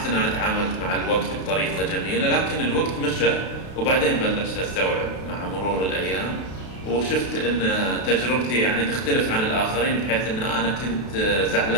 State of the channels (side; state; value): right; late; 32 ms